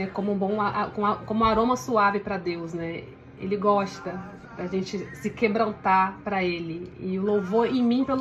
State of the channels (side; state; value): both; identical; correlation 1.00